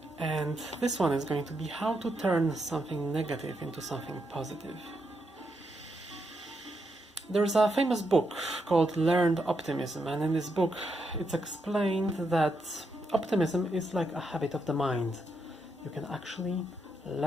And this one is going to be how to turn something negative into something positive. There's a famous book called Learned Optimism, and in this book it's explained that optimism is like a habit of the mind. You can actually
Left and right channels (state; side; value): normal; both; correlation 0.81